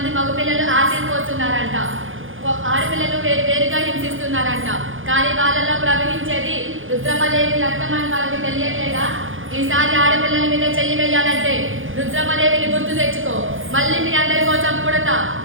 మగపిల్లలు యాసిడ్ పోస్తున్నారంట, ఆడపిల్లలు వేరుగా హింసిస్తున్నారంట. కానీ వాళ్ళలో ప్రవహించేది రుద్రమదేవి రక్తం అని వాళ్ళకి తెలియట్లేదా? ఈసారి ఆడపిల్లల మీద చెయ్యి వేయాలంటే రుద్రమదేవిని గుర్తు తెచ్చుకో. మళ్ళీ మీ అందరి కోసం పుడతా,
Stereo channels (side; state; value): left; late; 0.58 ms